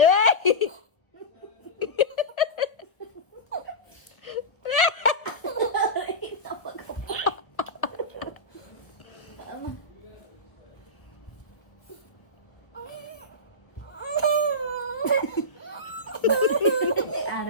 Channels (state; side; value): late; right; 1.2 ms